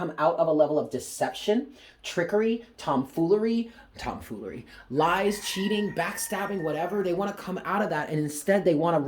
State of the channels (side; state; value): both; identical; correlation 1.00